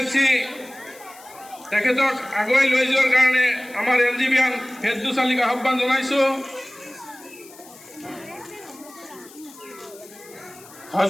তেখেতক আগুৱাই লৈ যোৱাৰ কাৰণে আমাৰ এনজিবিয়ান ফেৰদৌস আলীক আহ্বান জনাইছো।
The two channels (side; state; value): left; noise; hiss, 21 dB below the sound